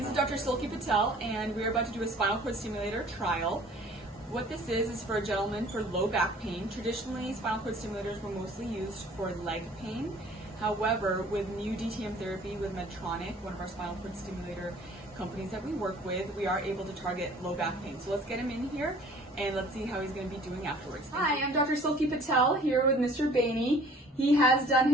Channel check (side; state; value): both; normal; correlation 0.52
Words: is Dr. Silky Patel, and we're about to do a spinal cord stimulator trial. What this is for a gentleman for low back pain. Traditionally, spinal cord stimulators were mostly used for leg pain. However, with new DTM therapy with Medtronic, one of our spinal cord stimulator companies that we work with, we are able to target low back pain. So let's get him in here and let's see how he's going to be doing afterwards. Hi, I'm Dr. Silky Patel here with Mr. Bainey. He has done